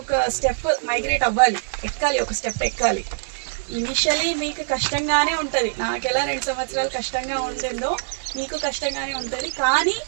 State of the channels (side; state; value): left; silent; digital silence